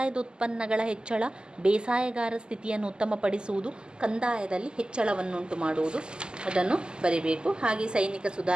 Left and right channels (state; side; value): late; left; 0.047 ms